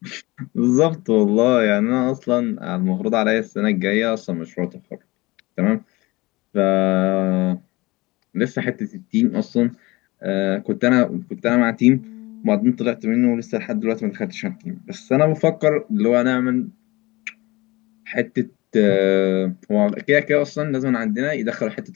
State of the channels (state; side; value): quieter; right; 21.9 dB